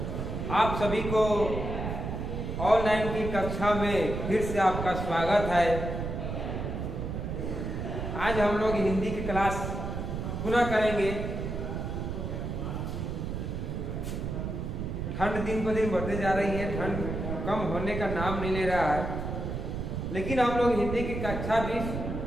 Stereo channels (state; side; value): noise; right; rumble, 4 dB below the sound